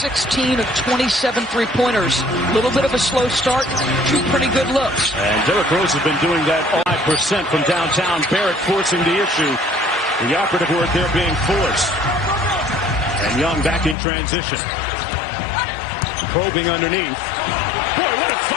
of 27 three-pointers. A little bit of a slow start, 2 pretty good looks. And Derrick Rose has been doing that 5% from downtown. Barrett forcing the issue. The operative word there being force. And Young back in transition. Probing underneath. Boy, what a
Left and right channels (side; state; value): right; drops out; at 14.0 s